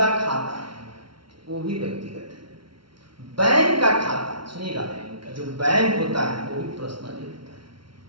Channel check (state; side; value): late; left; 0.73 ms